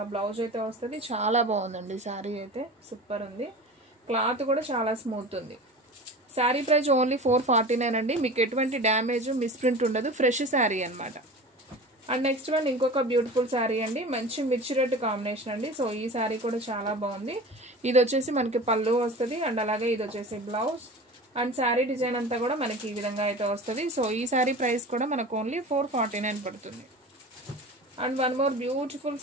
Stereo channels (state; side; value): normal; both; correlation 0.35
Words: బ్లౌజ్ అయితే వస్తుంది. చాలా బాగుందండి శారీ అయితే, సూపర్ ఉంది. క్లాత్ కూడా చాలా స్మూత్ ఉంది. శారీ ప్రైస్ ఓన్లీ 449 అండి. మీకు ఎటువంటి డ్యామేజ్ మిస్ప్రింట్ ఉండదు. ఫ్రెష్ శారీ అనమాట. అండ్ నెక్స్ట్ వన్ ఇంకొక బ్యూటిఫుల్ శారీ అండి, మంచి మిర్చి రెడ్ కాంబినేషన్ అండి. సో ఈ శారీ కూడా చాలా బాగుంది. ఇది వచ్చేసి మనకి పళ్ళు వస్తుంది, అండ్ అలాగే ఇది వచ్చేసి బ్లౌజ్. అండ్ శారీ డిజైన్ అంతా కూడా మనకి ఈ విధంగా అయితే వస్తుంది. సో ఈ శారీ ప్రైస్ కూడా మనకు ఓన్లీ 449 పడుతుంది. And one more beautiful